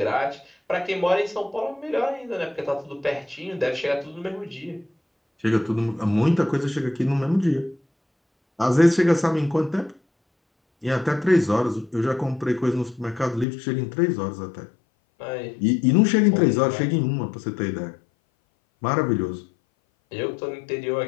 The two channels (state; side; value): drops out; right; at 13.5 s